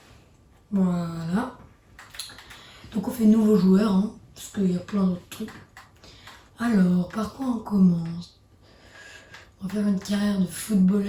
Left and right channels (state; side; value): identical; both; correlation 1.00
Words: Voilà. Donc on fait nouveau joueur, hein, parce qu'il y a plein d'autres trucs. Alors, par quoi on commence? On va faire une carrière de